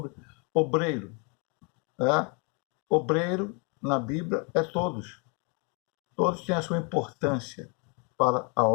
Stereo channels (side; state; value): right; quieter; 34.8 dB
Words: obreiro. Obreiro, na Bíblia, é todos. Todos têm a sua importância para a